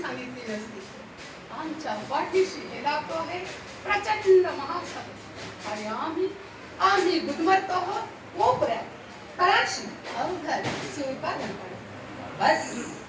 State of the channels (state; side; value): identical; both; correlation 1.00